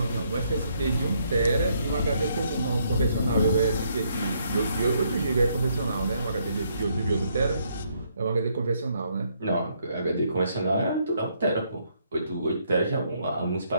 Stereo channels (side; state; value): both; inverted; correlation -0.72